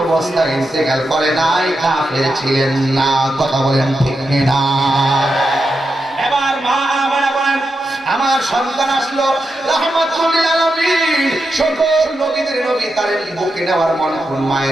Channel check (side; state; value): both; normal; correlation 0.87